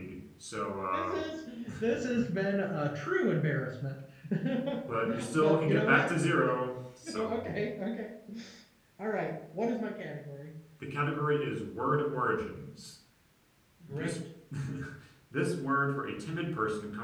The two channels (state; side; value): identical; both; correlation 1.00